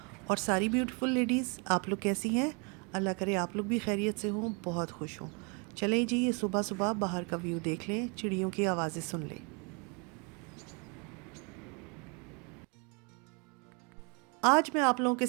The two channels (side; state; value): left; quieter; 34.0 dB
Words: और सारी ब्यूटीफुल लेडीज़, आप लोग कैसी हैं? अल्लाह करे आप लोग भी खैरियत से हों, बहुत खुश हों। चलें जी, ये सुबह सुबह बाहर का व्यू देख लें, चिड़ियों की आवाज़ें सुन लें। आज मैं आप लोगों के